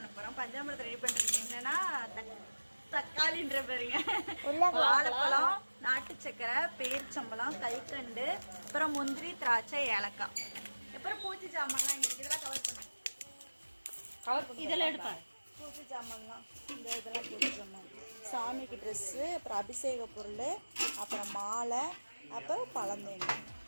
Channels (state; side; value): inverted; both; correlation -1.00